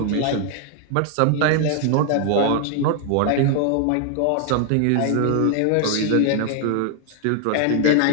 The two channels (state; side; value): different; both; correlation 0.00